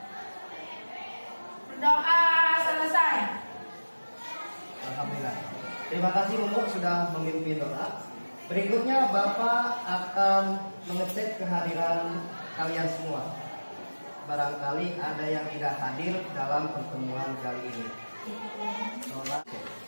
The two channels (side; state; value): both; inverted; correlation -1.00